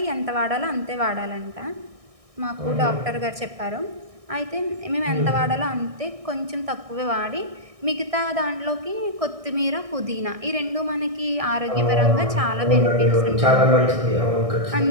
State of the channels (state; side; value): late; left; 1.6 ms